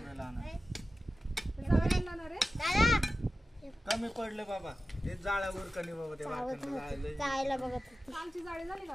कमी पडले बाबा ते जाळ्यावर कणी बाबा ते जायला बघत कालची जाळी झाली का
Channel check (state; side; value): normal; both; correlation 0.94